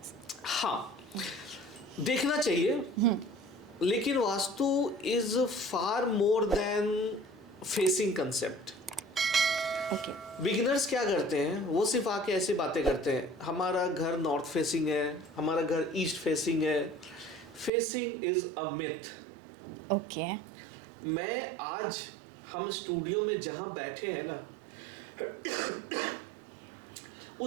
हाँ, देखना चाहिए, लेकिन vastu is far more than facing concept. Beginners क्या करते हैं, वो सिर्फ आके ऐसी बातें करते हैं, हमारा घर नॉर्थ फेसिंग है, हमारा घर ईस्ट फेसिंग है। Facing is a myth. Okay. मैं आज हम स्टूडियो में जहां बैठे हैं ना,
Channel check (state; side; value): drops out; left; at 17.7 s